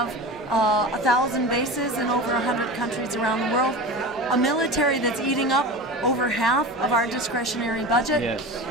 1,000 bases in over 100 countries around the world. A military that's eating up over half of our discretionary budget,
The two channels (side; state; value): both; normal; correlation 0.30